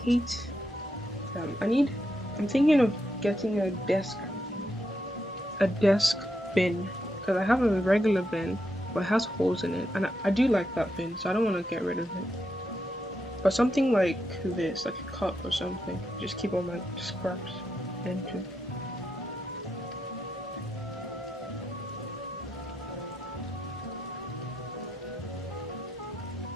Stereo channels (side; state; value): both; normal; correlation 0.82